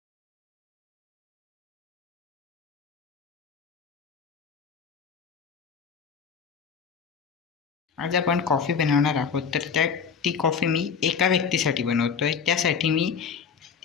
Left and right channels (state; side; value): quieter; right; 6.4 dB